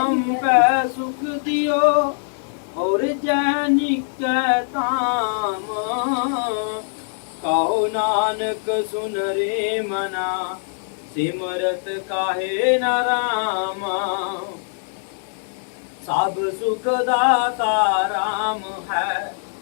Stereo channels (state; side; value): silent; right; digital silence